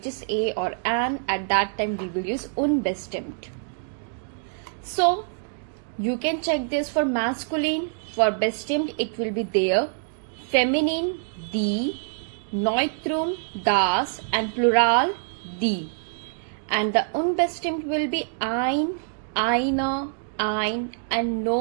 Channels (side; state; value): left; silent; digital silence